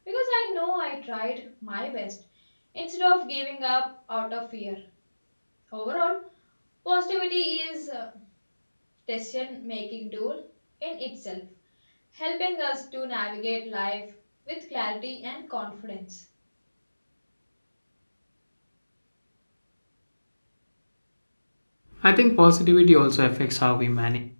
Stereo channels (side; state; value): both; inverted; correlation -1.00